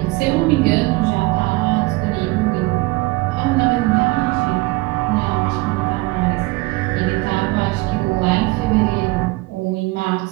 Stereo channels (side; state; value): left; quieter; 22.8 dB